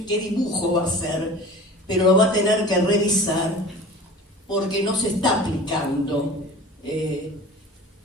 qué dibujo va a hacer, pero lo va a tener que revisar porque no se está aplicando.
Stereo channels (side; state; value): both; normal; correlation 0.40